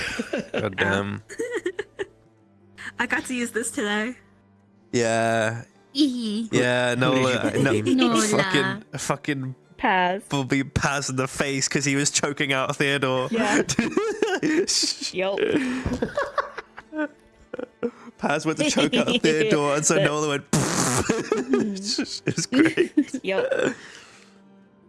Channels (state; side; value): identical; both; correlation 1.00